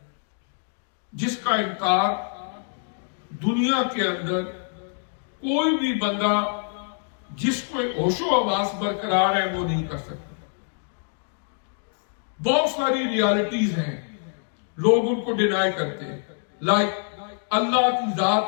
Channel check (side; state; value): right; silent; 62 dB below the other